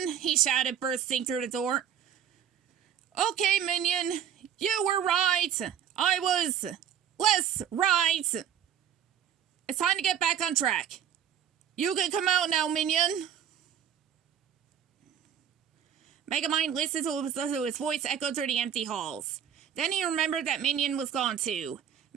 he shouted, bursting through the door. "Okay, Minion, you were right. I was less right. It's time to get back on track. You can come out now, Minion." Megamind listened to his voice echo through the empty halls. Then he remembered that Minion was gone too.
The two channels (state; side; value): quieter; left; 9.1 dB